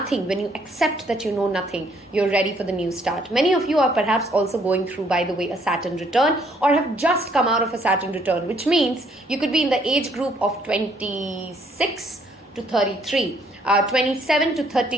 when you accept that you know nothing, you're ready for the new start. Many of you are perhaps also going through, by the way, a Saturn return, or have just come out of a Saturn return, which means you could be in the age group of 26 to 33. 27 to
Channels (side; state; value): both; normal; correlation 0.66